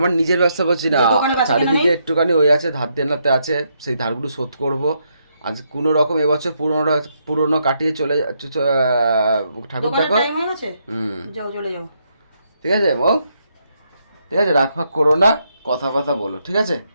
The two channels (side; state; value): both; inverted; correlation -0.77